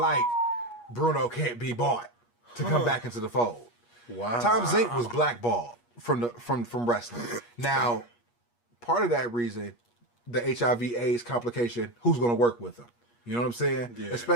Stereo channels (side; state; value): right; late; 8.4 ms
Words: Bruno can't be bought. to come back into the fold. Wow. Tom Zenk was blackballed from wrestling. Now, part of that reason, the HIV/AIDS complication, who's going to work with him? You know what I'm saying? Yeah.